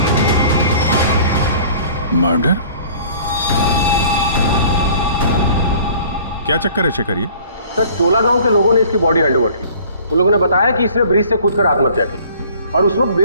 क्या चक्कर है शेखर ये? सर चोला गांव के लोगों ने इसकी बॉडी हैंडओवर की। उन लोगों ने बताया कि इसने ब्रिज से कूदकर आत्महत्या की और उस वक्त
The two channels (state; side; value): inverted; both; correlation -0.50